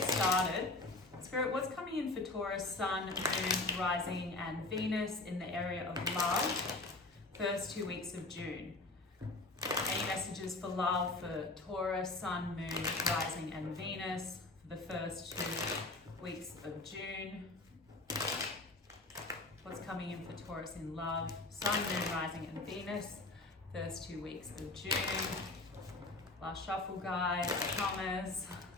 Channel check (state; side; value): quieter; right; 3.1 dB